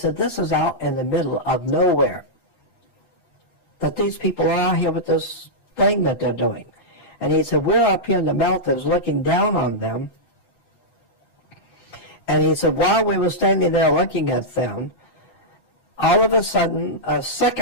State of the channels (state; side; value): late; right; 7.7 ms